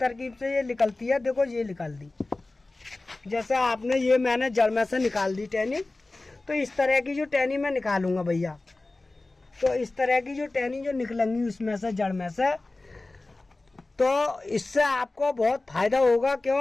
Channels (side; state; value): right; quieter; 3.1 dB